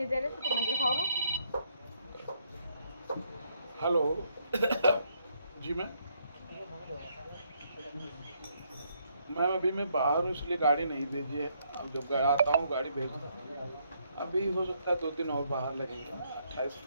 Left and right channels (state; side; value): inverted; both; correlation -0.72